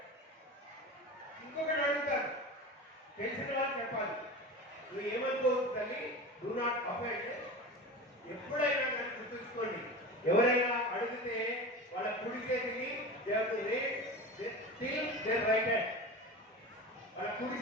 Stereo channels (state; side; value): normal; both; correlation 0.30